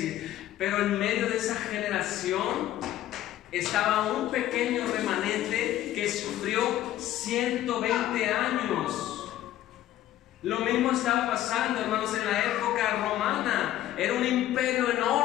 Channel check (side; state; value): right; quieter; 13.4 dB